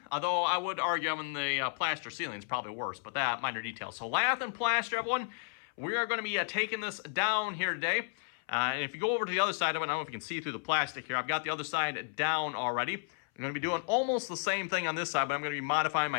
Although I would argue the plaster ceiling is probably worse, but that minor detail. So lath and plaster, everyone, we are going to be taking this down here today. And if you go over to the other side of it, I don't know if you can see through the plastic here. I've got the other side down already. I'm going to be doing almost the same thing on this side, but I'm going to be modifying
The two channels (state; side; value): silent; right; 56 dB below the other